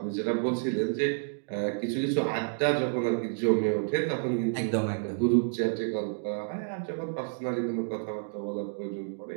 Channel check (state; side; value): silent; left; digital silence